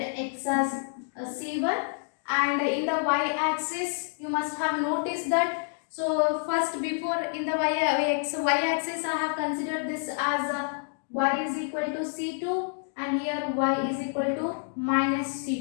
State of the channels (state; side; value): silent; right; digital silence